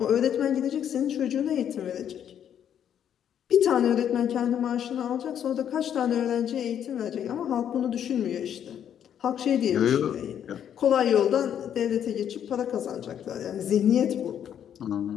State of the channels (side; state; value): right; quieter; 9.4 dB